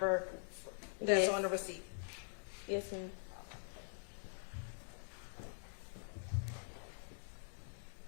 that's Yes. on the receipt? Yes, ma'am.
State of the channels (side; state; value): right; silent; digital silence